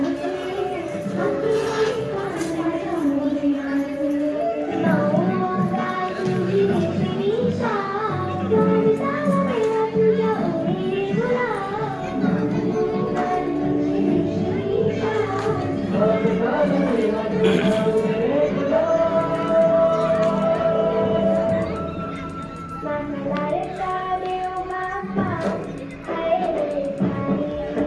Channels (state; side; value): identical; both; correlation 1.00